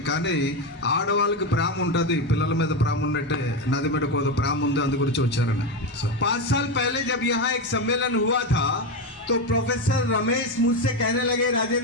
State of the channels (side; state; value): both; normal; correlation 0.13